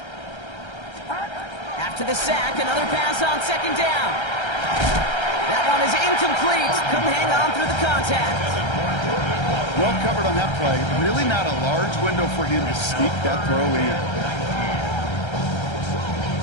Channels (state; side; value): late; right; 1.3 ms